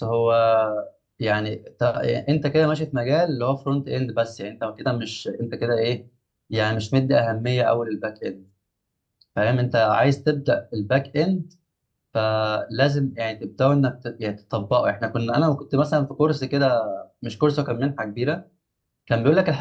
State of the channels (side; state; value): both; identical; correlation 1.00